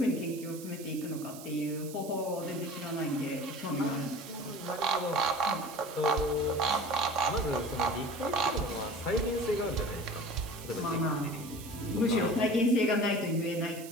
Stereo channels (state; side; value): noise; right; hiss, 15 dB below the sound